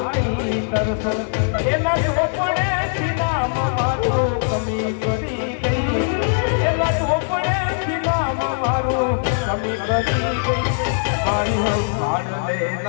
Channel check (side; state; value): right; silent; digital silence